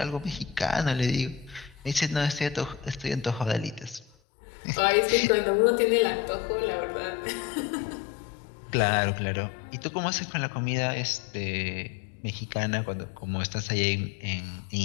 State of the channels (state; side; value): drops out; right; at 4.1 s